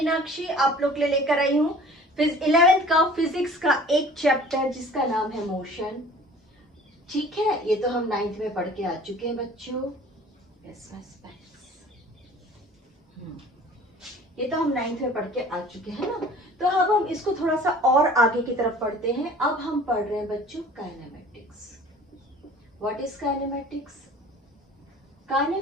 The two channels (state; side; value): normal; both; correlation 0.47